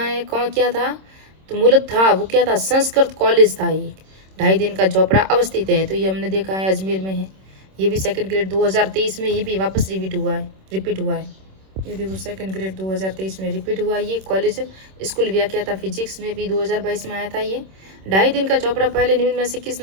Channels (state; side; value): late; left; 26 ms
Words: है, कौन क्या था? तो मूलत था वो क्या था? संस्कृत कॉलेज था ये। 2.5 दिन का झोपड़ा अवस्थित है। तो ये हमने देखा है अजमेर में है। ये भी सेकंड ग्रेड 2023 में ये भी वापस रिपीट हुआ है। ये देखो सेकंड ग्रेड 2023 में रिपीट हुआ। ये कॉलेज स्कूल व्याख्या था फिजिक्स में भी 2022 में आया था। ये 2.5 दिन का चौपड़ा पहले निम्न में से किस